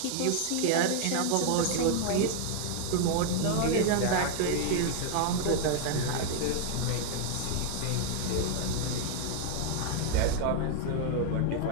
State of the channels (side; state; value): both; different; correlation 0.00